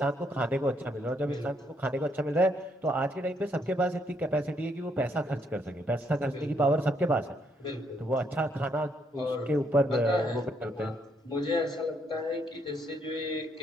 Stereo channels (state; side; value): normal; both; correlation 0.73